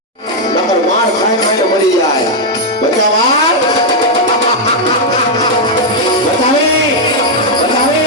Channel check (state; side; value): normal; both; correlation -0.01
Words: નંબર માર ખાઈ ખાઈને મરી જાય બચ્ચા માર બતાવી